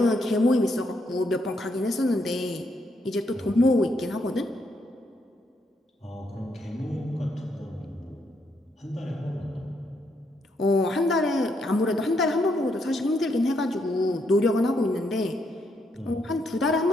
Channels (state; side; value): normal; both; correlation 0.76